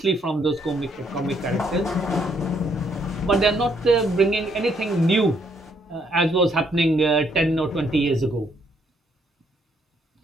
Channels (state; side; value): normal; both; correlation 0.71